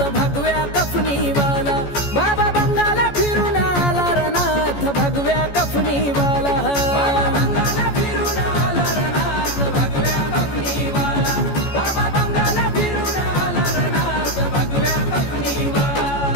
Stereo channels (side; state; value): right; late; 14 ms